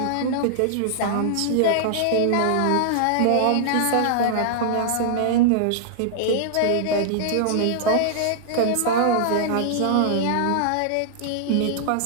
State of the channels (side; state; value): both; different; correlation -0.01